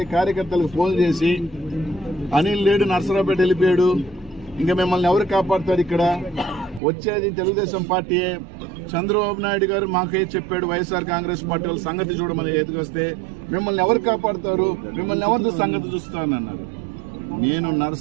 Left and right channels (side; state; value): left; drops out; at 6.8 s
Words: కార్యకర్తలకు ఫోన్ చేసి అనిల్ లేడు, నర్సరావుపేట వెళ్ళిపోయాడు, ఇంకా మిమ్మల్ని ఎవరు కాపాడుతారు, ఇక్కడ వచ్చేది తెలుగుదేశం పార్టీయే, చంద్రబాబు నాయుడు గారు మాకే చెప్పాడు వైఎస్ఆర్ కాంగ్రెస్ పార్టీ వాళ్ళ సంగతి చూడమని ఎదుకొస్తే మిమ్మల్ని ఎవరు కాపాడుతారు, మిమ్మల్ని ఎవరితో సంగతి చూస్తానన్నారు. నేను